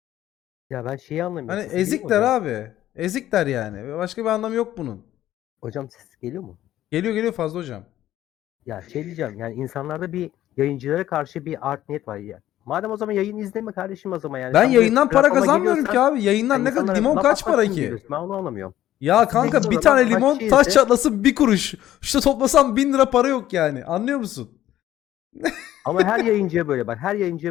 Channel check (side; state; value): right; quieter; 13.1 dB